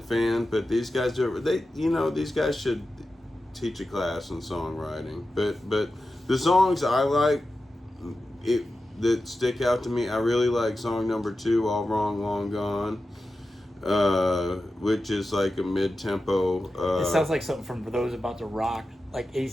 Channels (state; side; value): normal; both; correlation 0.92